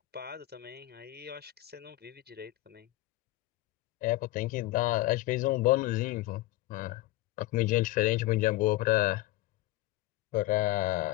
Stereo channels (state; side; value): quieter; right; 17.5 dB